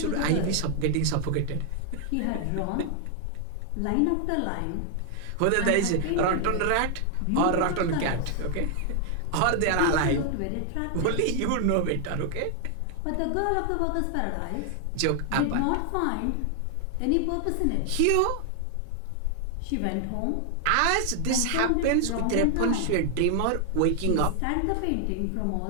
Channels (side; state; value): both; different; correlation 0.00